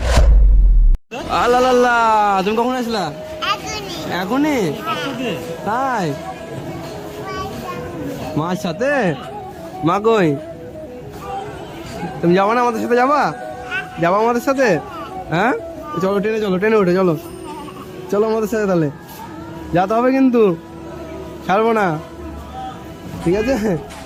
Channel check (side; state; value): both; identical; correlation 1.00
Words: আল্লাহ, তুমি কখন আসলা? এখনই? তাই? মার সাথে? মা কই? তুমি যাবো না আমাদের সাথে? যাবা আমাদের সাথে? হ্যাঁ চলো, ট্রেনে উঠে চলো আমাদের সাথে, তাহলে যেতে হবে কিন্তু, ছাড়বো না, ঠিক আছে?